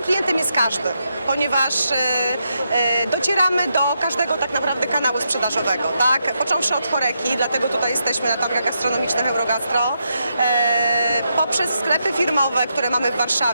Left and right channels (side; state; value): both; inverted; correlation -0.82